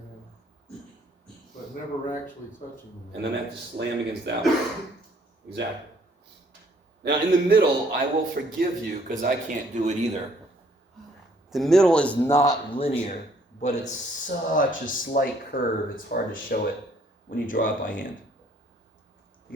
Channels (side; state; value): both; normal; correlation 0.63